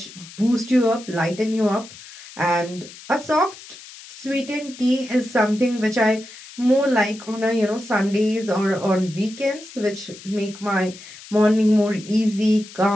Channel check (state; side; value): noise; left; hiss, 17 dB below the sound